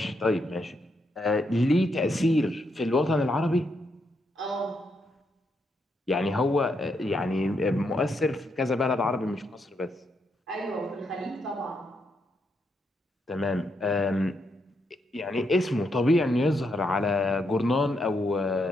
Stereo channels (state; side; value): normal; both; correlation 0.79